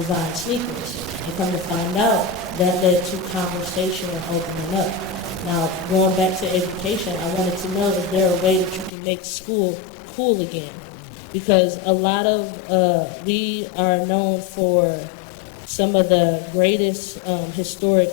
sneakers. And come to find out, that led to conversation and opening up. Now, going back to education, I wanted to know, is there a way that you can make school cool again? Because a lot of, we are known for some of the greatest historic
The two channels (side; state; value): right; drops out; at 8.9 s